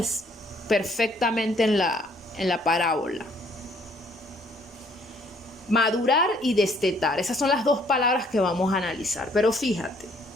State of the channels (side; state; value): both; normal; correlation 0.63